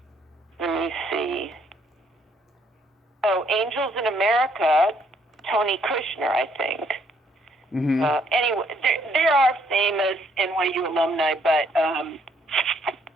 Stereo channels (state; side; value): normal; both; correlation 0.68